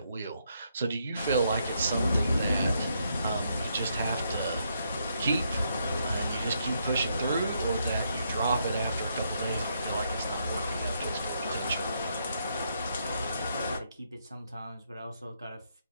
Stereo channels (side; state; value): both; inverted; correlation -0.76